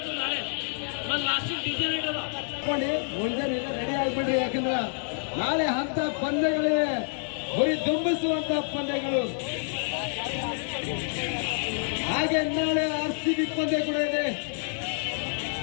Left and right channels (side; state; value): right; silent; 59 dB below the other